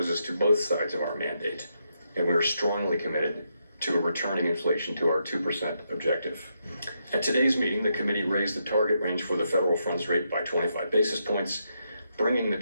to both sides of our mandate, and we are strongly committed to returning inflation to our 2% objective. At today's meeting, the committee raised the target range for the federal funds rate by 25 basis points, bringing the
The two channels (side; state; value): both; inverted; correlation -0.81